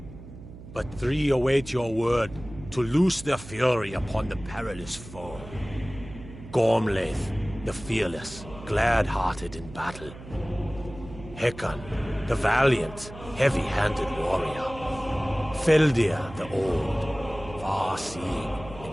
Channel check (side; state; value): right; noise; hum, 15 dB below the sound